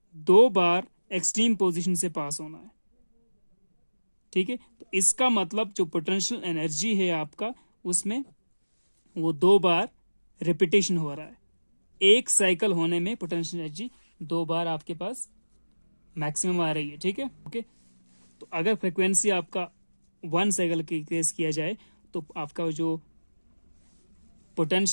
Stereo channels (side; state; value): both; inverted; correlation -1.00